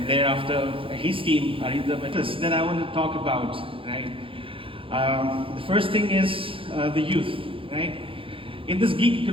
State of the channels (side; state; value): left; late; 0.26 ms